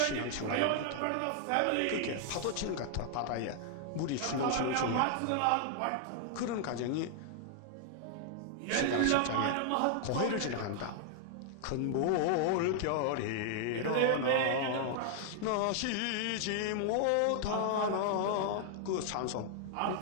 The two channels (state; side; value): different; both; correlation -0.01